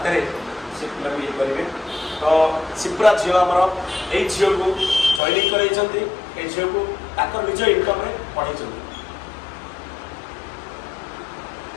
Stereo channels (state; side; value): drops out; right; at 5.2 s